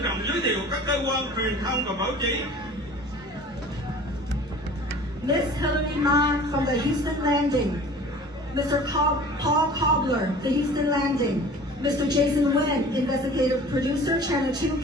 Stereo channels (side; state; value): both; normal; correlation 0.44